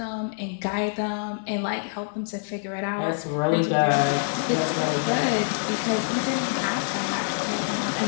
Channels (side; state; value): right; silent; digital silence